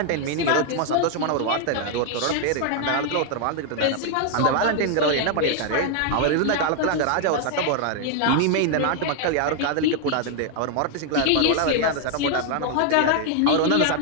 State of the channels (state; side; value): different; both; correlation 0.00